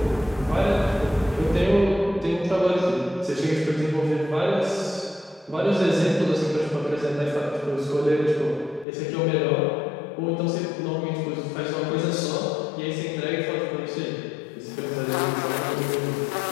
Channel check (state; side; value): drops out; right; at 8.8 s